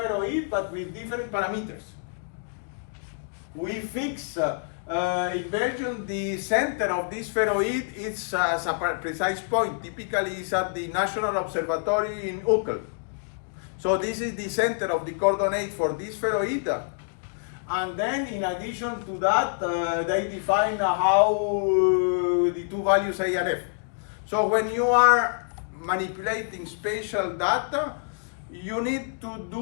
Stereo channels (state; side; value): silent; right; digital silence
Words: but with different parameters. We fix in Belgium the center of this spheroid is as a precise point. Typically, it's at the National Observatory in Uccle. So this is the center of the coordinate for this spheroid. And then, in addition to that, they define how the two values A and F. So when you are manipulating spatial data, you need